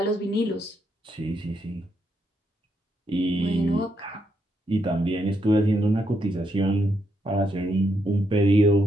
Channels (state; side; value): normal; both; correlation 0.79